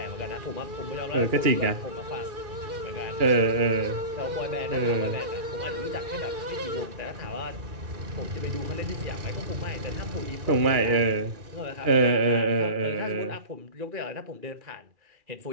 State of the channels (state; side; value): late; left; 2.4 ms